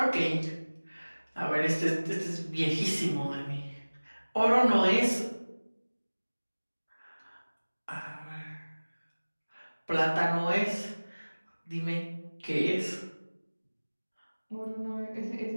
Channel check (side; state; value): both; inverted; correlation -1.00